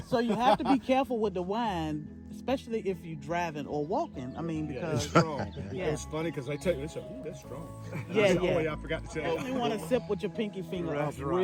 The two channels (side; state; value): both; identical; correlation 1.00